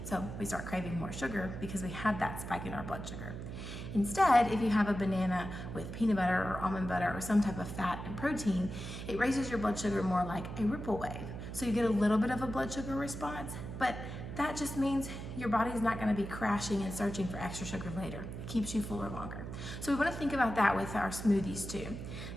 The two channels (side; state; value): right; noise; hum, 8 dB below the sound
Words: So we start craving more sugar because we had that spike in our blood sugar. Instead, if you have a banana with peanut butter or almond butter or some type of fat and protein, it raises your blood sugar more like a ripple wave. So you get a little bit of a blood sugar response, but that just means your body's not going to be crashing and searching for extra sugar later. It keeps you fuller longer. So we want to think about that with our smoothies too.